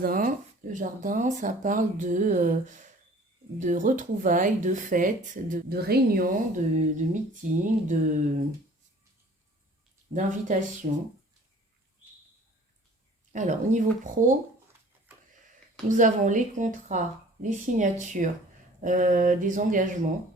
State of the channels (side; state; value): both; normal; correlation 0.50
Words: Le jardin, ça parle de retrouvailles, de fêtes, de réunions, de meetings, d'invitations. Alors, au niveau pro, nous avons les contrats, les signatures, des engagements.